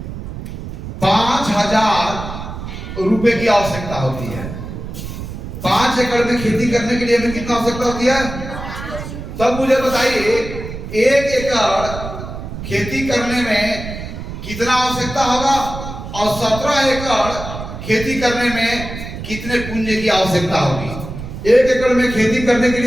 5,000 रुपए की आवश्यकता होती है। 5 एकड़ में खेती करने के लिए हमें कितना आवश्यकता होती है? तब मुझे बताइए 1 एकड़ खेती करने में कितना आवश्यकता होगा और 17 एकड़ खेती करने में कितने पूंजी की आवश्यकता होगी? 1 एकड़ में खेती करने के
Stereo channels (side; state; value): right; noise; rumble, 9 dB below the sound